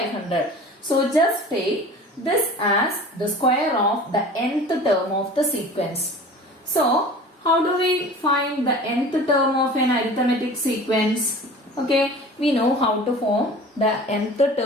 So just take this as the square of the nth term of the sequence. So how do we find the nth term of an arithmetic sequence? Okay, we know how to form the nth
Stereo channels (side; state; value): both; normal; correlation 0.41